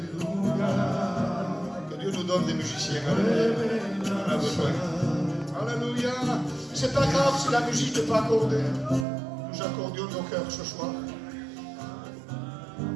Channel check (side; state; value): left; drops out; at 9.1 s